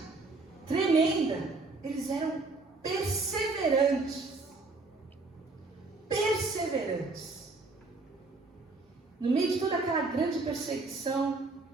tremenda. Eles eram perseverantes. Perseverantes. No meio de toda aquela grande perseguição,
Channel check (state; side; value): quieter; left; 3.6 dB